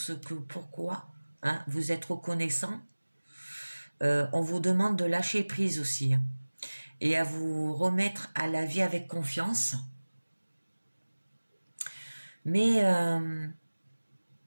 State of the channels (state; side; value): inverted; both; correlation -1.00